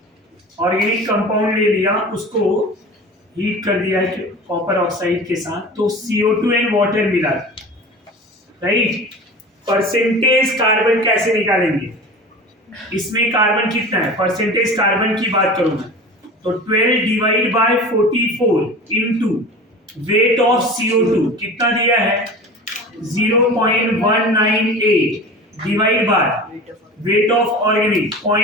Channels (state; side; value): normal; both; correlation 0.35